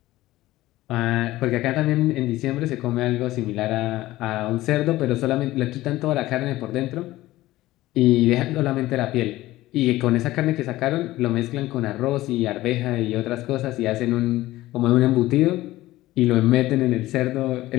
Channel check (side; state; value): right; quieter; 16.8 dB